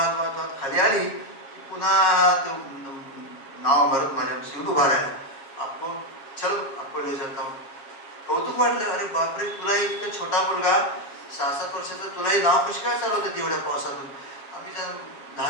वाहत वाहत खाली आली. पुन्हा तो नाव भरत माझ्या शिवून उभा राहिला. आपको चल आपको ले जाता हूँ. कौतुक वाटलं, अरे बापरे, तुला इतका छोटा मुलगा 6-7 वर्षाचा, तुलाही नाव कशी काय चालवतं तेवढ्या पावसातून. आम्ही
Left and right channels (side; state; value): right; late; 7.2 ms